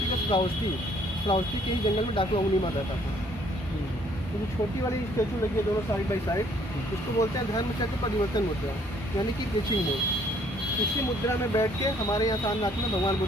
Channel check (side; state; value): both; normal; correlation 0.62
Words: ऑफ श्रावस्ती के ही जंगल में डाकू अंगुली मार रहता था। तो जो छोटी वाली स्टेचू लगी है दोनों साइड बाई साइड, उसको बोलते हैं धर्म चक्र परिवर्तन मुद्रा, यानी कि प्रीचिंग मोड। इसी मुद्रा में बैठ के हमारे यहाँ सारनाथ में भगवान